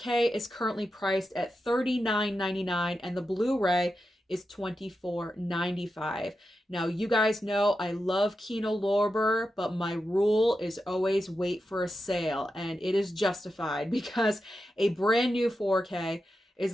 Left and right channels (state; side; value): normal; both; correlation 0.89